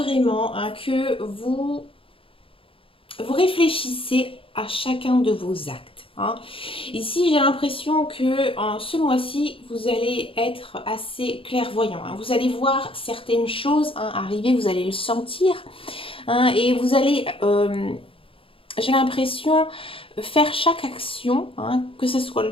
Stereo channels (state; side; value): late; right; 0.26 ms